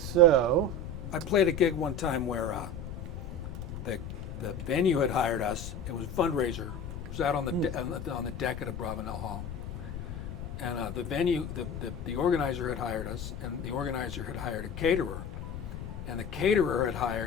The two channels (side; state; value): left; noise; rumble, 8 dB below the sound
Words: I played a gig one time where the venue had hired us. It was a fundraiser. It was out on the deck at a Bravenel Hall. And the venue, the organizer had hired us, and the organizer had hired a caterer, and the caterer had